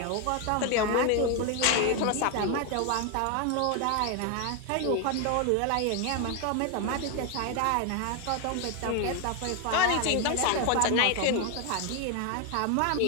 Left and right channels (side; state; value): both; different; correlation 0.01